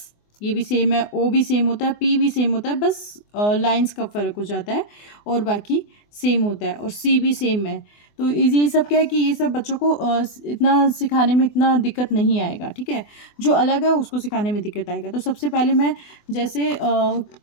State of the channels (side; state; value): right; late; 24 ms